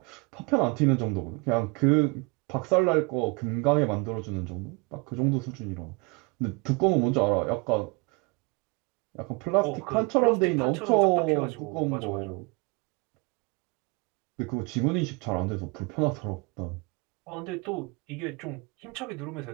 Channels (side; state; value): left; quieter; 29.0 dB